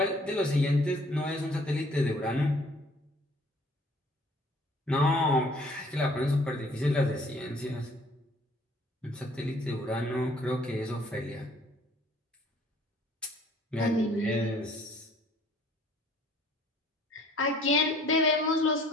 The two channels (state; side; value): normal; both; correlation 0.57